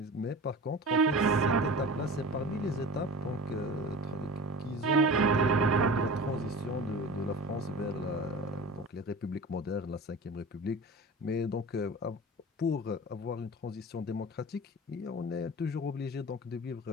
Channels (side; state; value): both; normal; correlation 0.35